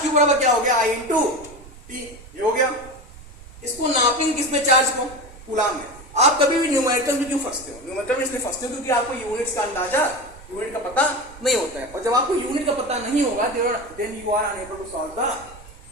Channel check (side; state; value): right; noise; rumble, 19 dB below the sound